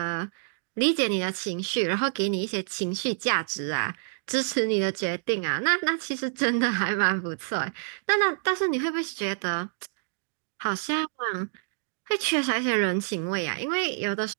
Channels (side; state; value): left; silent; digital silence